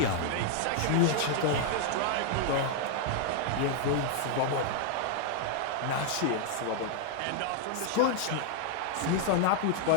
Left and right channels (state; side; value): different; both; correlation 0.00